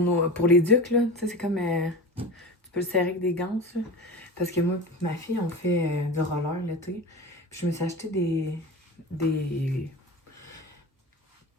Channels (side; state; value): both; normal; correlation 0.30